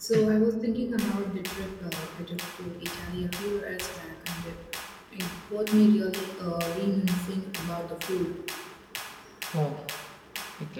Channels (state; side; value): identical; both; correlation 1.00